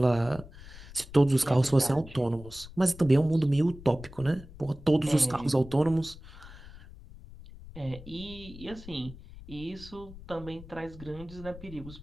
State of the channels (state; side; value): noise; left; rumble, 17 dB below the sound